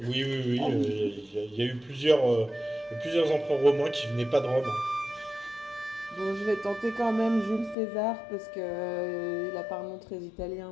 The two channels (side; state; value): right; drops out; at 7.8 s